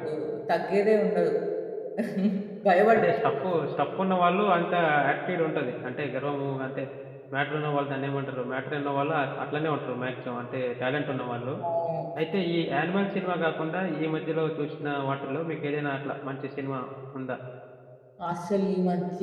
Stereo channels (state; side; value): identical; both; correlation 1.00